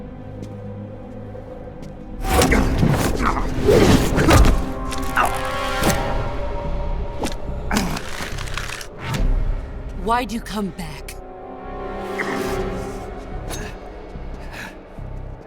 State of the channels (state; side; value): identical; both; correlation 1.00